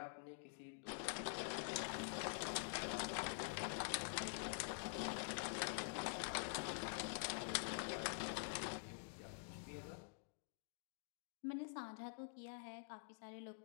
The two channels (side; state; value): right; silent; digital silence